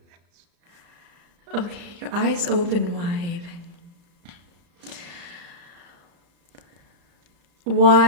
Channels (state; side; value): late; left; 35 ms